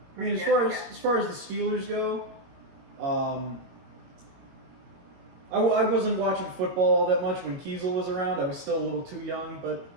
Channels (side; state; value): left; late; 22 ms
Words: I mean, as far as the Steelers go, I wasn't watching football all that much when Kiesel was around. I was still a little too young, but